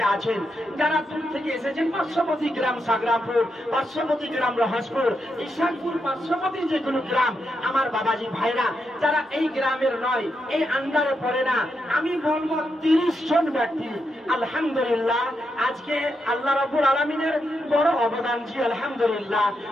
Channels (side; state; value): both; normal; correlation 0.83